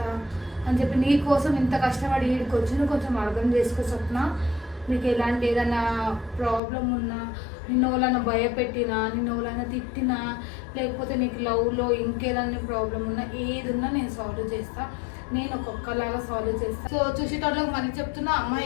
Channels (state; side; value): drops out; right; at 6.6 s